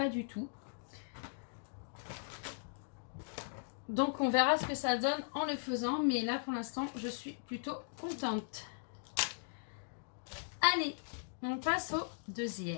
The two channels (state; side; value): silent; right; digital silence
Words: du tout. Donc on verra ce que ça donne en le faisant, mais là pour l'instant je suis plutôt contente. Allez, on passe au